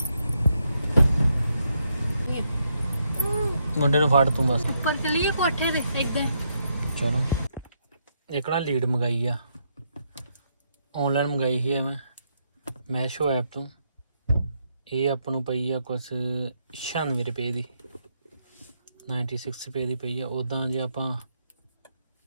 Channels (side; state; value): both; inverted; correlation -0.78